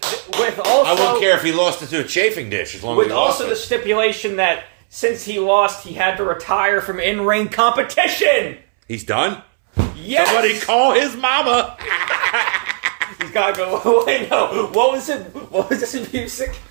also... I wouldn't care if he lost it to a chafing dish as long as with he lost also the stipulation that since he lost, he had to retire from in-ring competition. He's done? Yes. Somebody call his mama. He's got to go. Wait, no. What was it? What was this music?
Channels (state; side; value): silent; left; 68 dB below the other